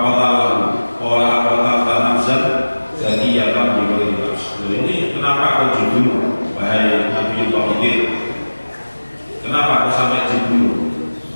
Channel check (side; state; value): both; inverted; correlation -1.00